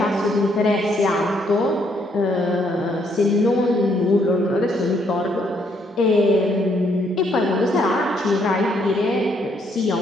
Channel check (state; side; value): normal; both; correlation 0.71